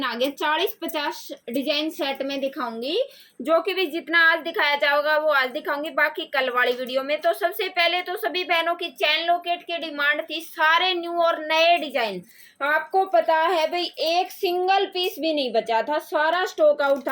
आ गए, 40-50 डिजाइन सेट में दिखाऊंगी। जो कि भी जितना आज दिखाया जाएगा वो आज दिखाऊंगी, बाकी कल वाली वीडियो में। तो सबसे पहले तो सभी बहनों की चैन लॉकेट की डिमांड थी, सारे न्यू और नए डिजाइन। आपको पता है भाई एक सिंगल पीस भी नहीं बचा था, सारा स्टॉक आउट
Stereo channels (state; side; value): identical; both; correlation 1.00